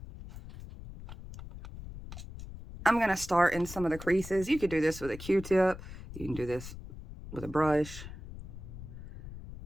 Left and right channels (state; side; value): noise; left; rumble, 12 dB below the sound